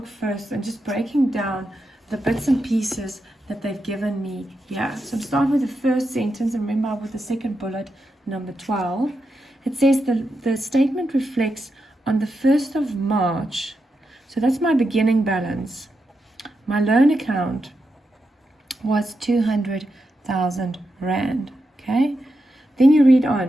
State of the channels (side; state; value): both; normal; correlation 0.86